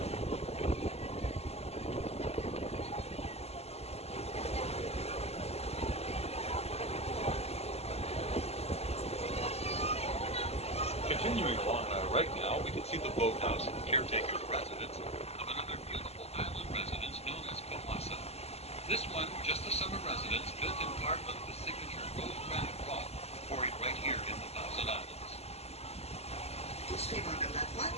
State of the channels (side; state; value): right; late; 0.30 ms